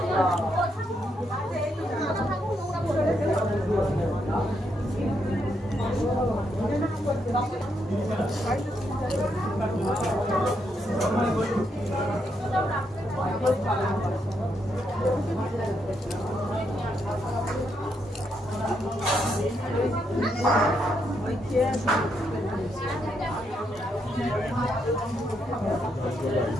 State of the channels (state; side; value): normal; both; correlation 0.78